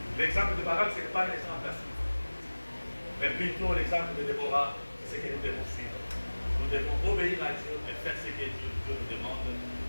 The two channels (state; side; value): inverted; both; correlation -1.00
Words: L'exemple de Barak, ce n'est pas l'exemple à suivre. Mais plutôt l'exemple de Déborah, c'est ce que nous devons suivre. Nous devons obéir à Dieu et faire ce que Dieu nous demande